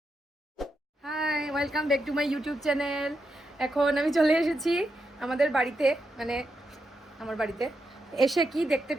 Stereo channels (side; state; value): both; normal; correlation 0.84